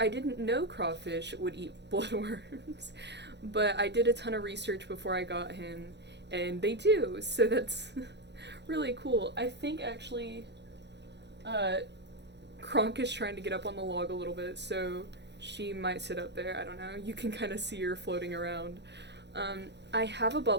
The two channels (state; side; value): late; left; 0.50 ms